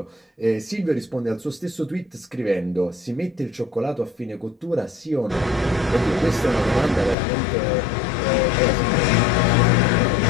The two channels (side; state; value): right; drops out; at 7.2 s